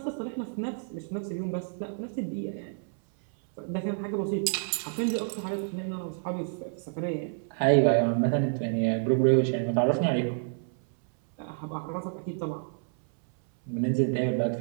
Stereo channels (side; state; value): left; silent; 59 dB below the other